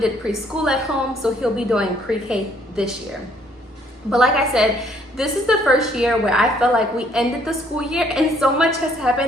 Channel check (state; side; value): normal; both; correlation 0.65